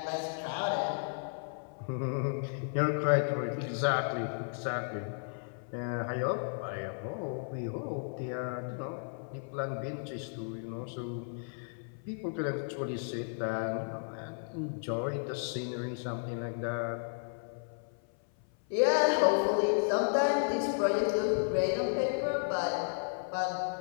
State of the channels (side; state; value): right; silent; 55 dB below the other